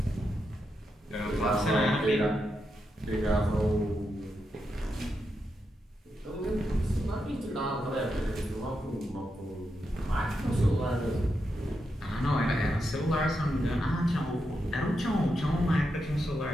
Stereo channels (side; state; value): both; normal; correlation 0.85